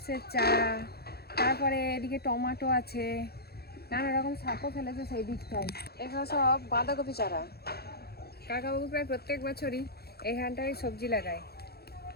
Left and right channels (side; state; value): right; late; 0.46 ms